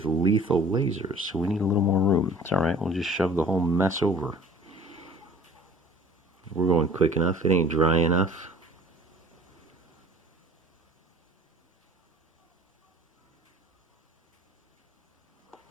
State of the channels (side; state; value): both; normal; correlation 0.48